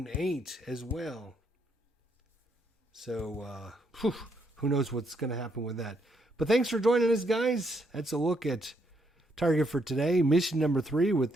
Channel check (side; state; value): both; normal; correlation 0.75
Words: 8 as well. So, who knows what's going to happen with that. But thanks for joining us, guys. That's a look at target for today. Mission number 3 with